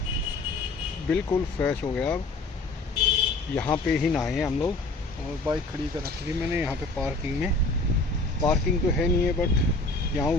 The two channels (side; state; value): right; quieter; 3.2 dB